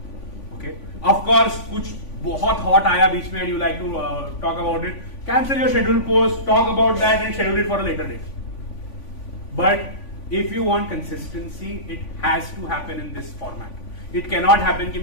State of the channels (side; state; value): right; late; 3.5 ms